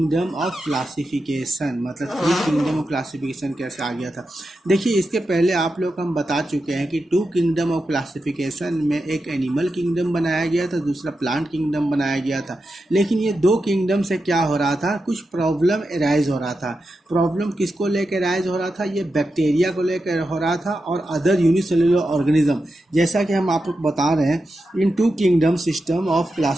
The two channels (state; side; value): normal; both; correlation 0.89